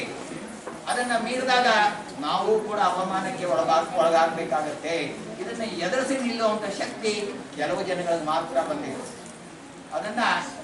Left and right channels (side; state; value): both; identical; correlation 1.00